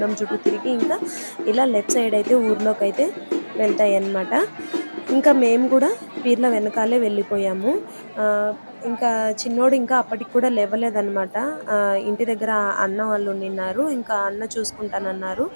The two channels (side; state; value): both; inverted; correlation -1.00